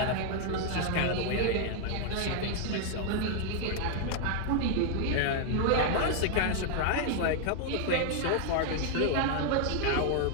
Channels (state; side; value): different; both; correlation 0.00